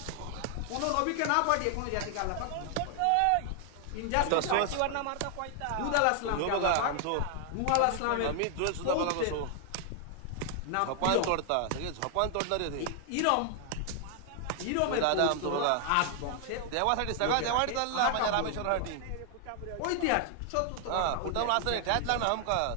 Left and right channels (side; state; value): both; different; correlation 0.00